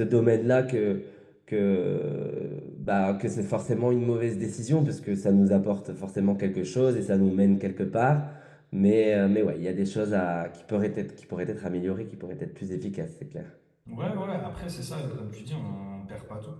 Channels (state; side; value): identical; both; correlation 1.00